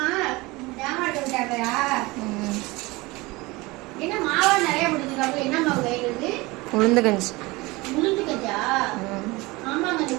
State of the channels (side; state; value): left; quieter; 22.6 dB